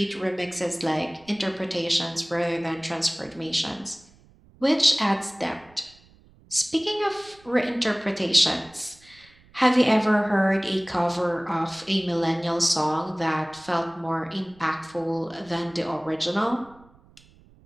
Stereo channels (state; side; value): noise; right; rumble, 28 dB below the sound